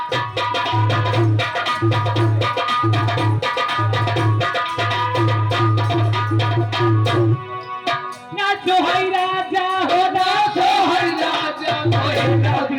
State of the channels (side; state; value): both; identical; correlation 1.00